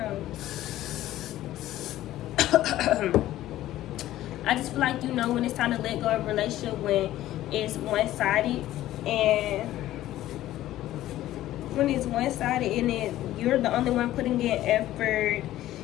on. I just feel like you know when it's time to let go of a relationship when it's one-sided, and when it's one-sided and then you're the only one putting in effort,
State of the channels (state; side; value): quieter; right; 14.3 dB